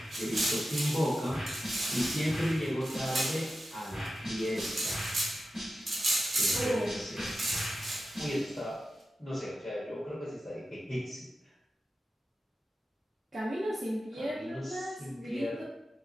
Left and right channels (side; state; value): both; normal; correlation 0.92